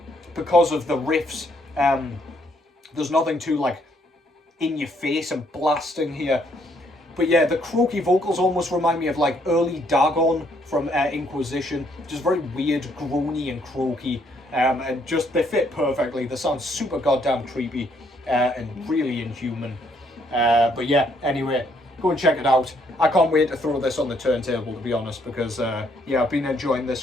because of the riffs. There's nothing too, like, in your face and blasting here. But yeah, the croaky vocals almost remind me of, like, early Dagon from Inquisition. Just very weird, groany and croaky. And just, they fit perfectly. They sound super goddamn creepy and really inhuman. But yeah, anyway, go and check it out. I can't wait to throw this on the turntable, to be honest, because yeah, I've been enjoying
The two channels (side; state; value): both; normal; correlation 0.69